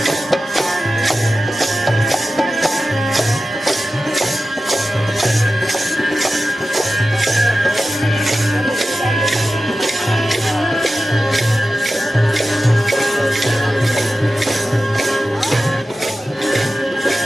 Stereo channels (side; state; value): both; normal; correlation 0.94